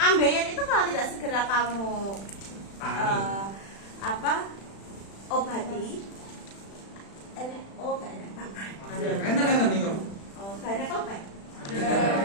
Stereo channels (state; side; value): late; right; 36 ms